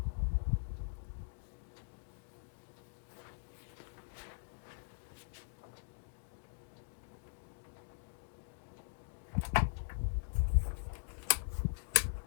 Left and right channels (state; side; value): silent; right; digital silence